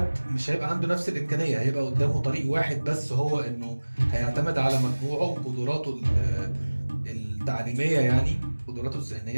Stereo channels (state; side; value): inverted; both; correlation -1.00